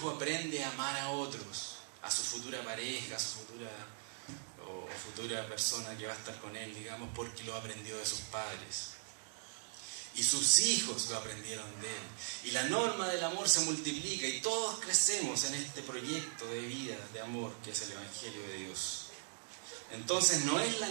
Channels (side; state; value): left; silent; digital silence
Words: aprende a amar a otros, a su futura pareja, a su futura persona que va a estar con él, digamos, porque lo aprendió de sus padres. Y sus hijos lo aprendieron de él. Y la norma del amor se multiplica y todos crecemos en este proyecto de vida, de amor, que es el Evangelio de Dios. Entonces no es la